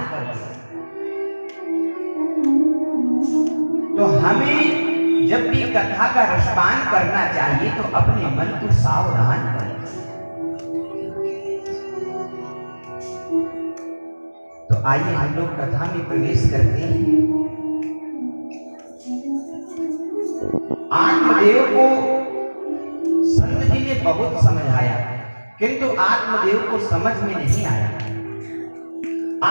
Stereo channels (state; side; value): inverted; both; correlation -1.00